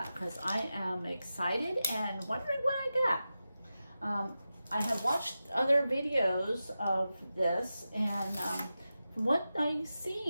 because I am excited and wondering what I got. I have watched other videos of this, and from what I've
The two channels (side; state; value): both; inverted; correlation -0.92